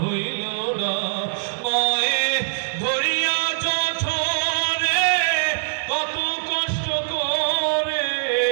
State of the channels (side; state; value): left; silent; 64 dB below the other